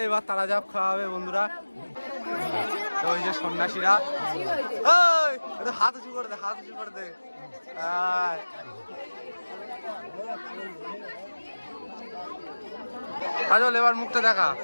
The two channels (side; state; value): both; inverted; correlation -1.00